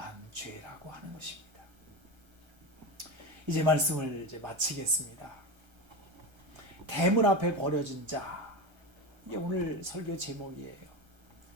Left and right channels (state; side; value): late; left; 1.3 ms